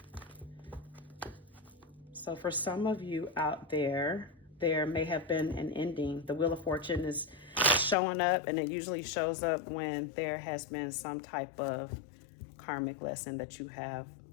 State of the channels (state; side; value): drops out; right; at 8.0 s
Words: So for some of you out there, there may have been an ending. The Wheel of Fortune is showing up, and it usually shows up when there has been some type of karmic lesson that you have